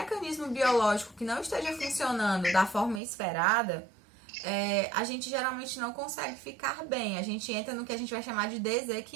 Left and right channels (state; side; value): drops out; left; at 3.0 s